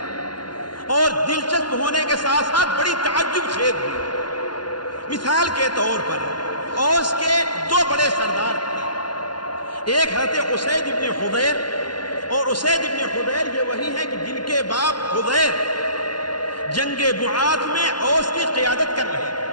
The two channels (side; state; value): right; late; 0.71 ms